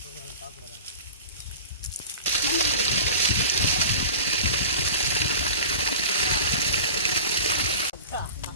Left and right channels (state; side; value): inverted; both; correlation -0.37